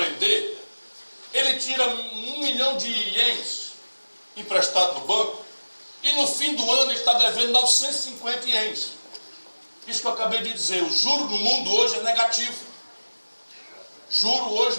ele tira 1 milhão de ienes emprestado no banco e no fim do ano ele está devendo 950 ienes. Isso que eu acabei de dizer, o juro no mundo hoje é negativo. Juro hoje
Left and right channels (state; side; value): inverted; both; correlation -1.00